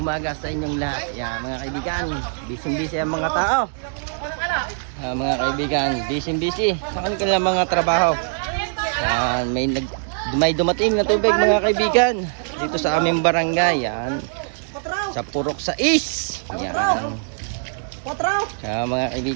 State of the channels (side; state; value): left; silent; digital silence